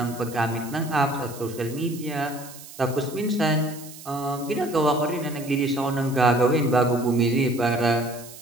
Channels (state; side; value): noise; right; hiss, 16 dB below the sound